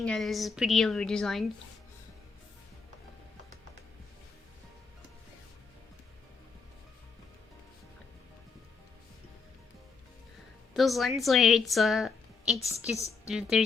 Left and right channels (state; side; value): quieter; right; 5.0 dB